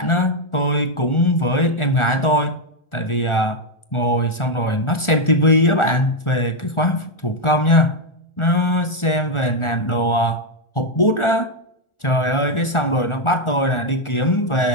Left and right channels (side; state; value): right; late; 1.4 ms